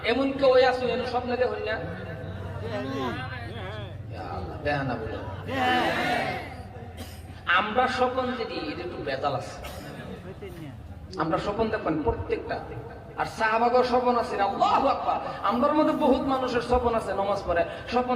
এমন কেউ আছে স্বপ্নে দেখুন না, আমরা স্বপ্ন যদি একটু বেজাল আছে, আমরা স্বপ্ন দেখবেন প্রত্যেকটা। আর সাহাবাগর স্বপ্ন আছে, আল্লাহু আকবার। আমরার মধ্যে বহুত মানুষের স্বপ্ন আছে, নামাজ পড়ে স্বপ্ন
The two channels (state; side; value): identical; both; correlation 1.00